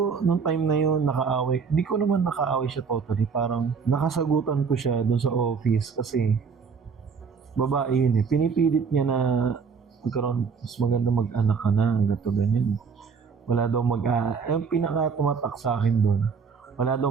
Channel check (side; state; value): left; quieter; 5.6 dB